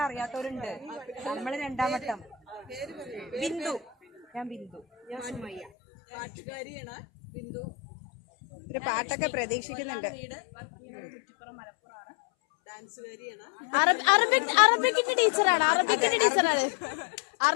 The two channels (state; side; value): drops out; right; at 5.7 s